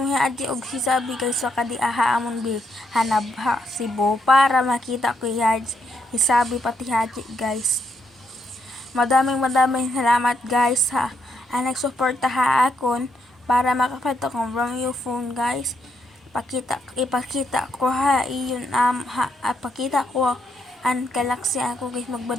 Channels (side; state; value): both; normal; correlation 0.77